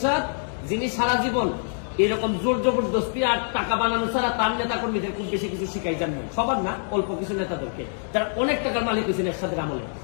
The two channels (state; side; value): silent; right; 61 dB below the other